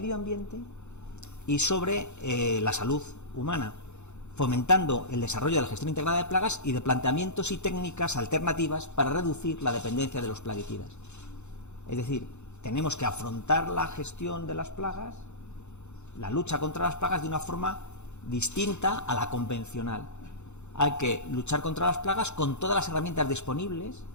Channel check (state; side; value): late; right; 0.82 ms